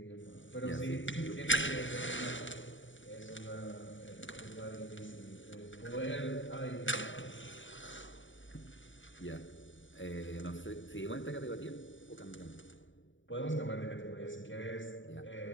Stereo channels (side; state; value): right; late; 0.55 ms